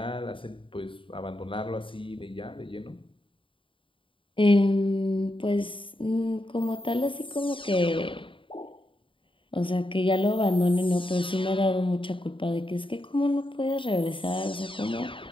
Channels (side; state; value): right; late; 0.25 ms